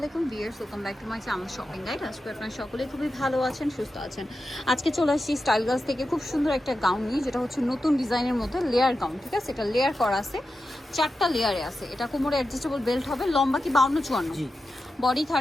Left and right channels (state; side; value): normal; both; correlation 0.91